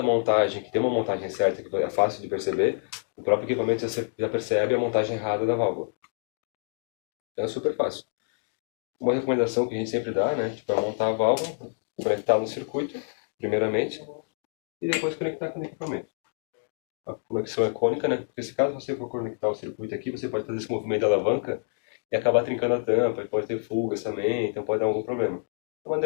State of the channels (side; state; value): right; silent; digital silence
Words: montagem, que tem uma montagem certa, que é fácil de perceber, o próprio equipamento já percebe a montagem errada da válvula. Então, é super fácil. Uma recomendação que a gente sempre dá, né, tipo, é montar a válvula, conectar no circuito, primeiramente, e depois conectar com o equipamento. A conexão é cônica, né, porque se caso você for conectar o circuito aqui, você pode fazer esse movimento de alavanca e acabar trincando a tampa, e pode ter fugas também, então pode dar algum problema. É a